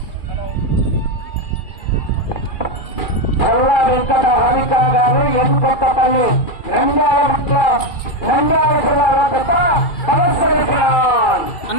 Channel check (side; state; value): right; late; 2.3 ms